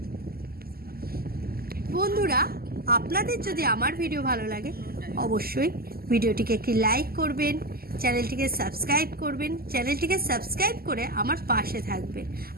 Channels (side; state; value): left; late; 0.44 ms